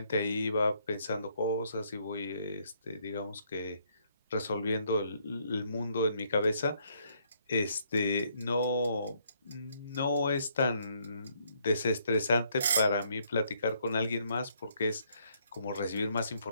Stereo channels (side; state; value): both; inverted; correlation -0.70